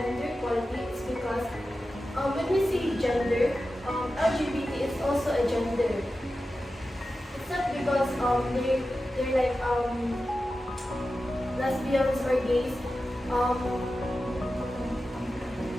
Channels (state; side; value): normal; both; correlation 0.93